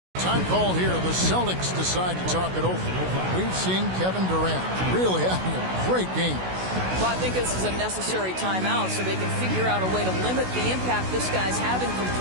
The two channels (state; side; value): late; left; 16 ms